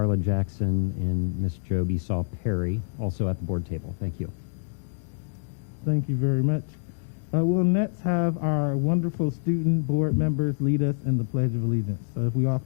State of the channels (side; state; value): right; silent; digital silence